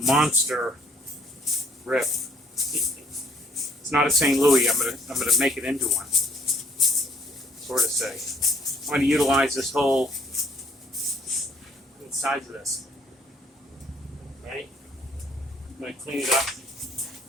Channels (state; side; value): normal; both; correlation 0.62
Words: monster rip. It's not a St. Louis. I'm gonna make it into one. Sort of say. I'm gonna utilize this whole size of this. Right? I'm gonna clean it up.